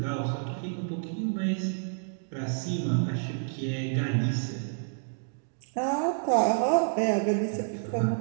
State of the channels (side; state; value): left; silent; digital silence